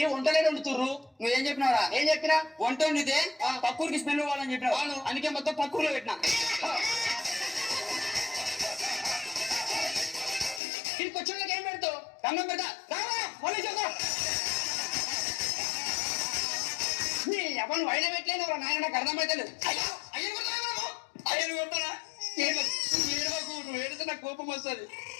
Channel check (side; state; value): right; drops out; at 10.6 s